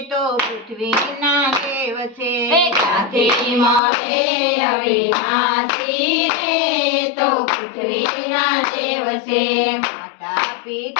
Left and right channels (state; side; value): drops out; right; at 3.8 s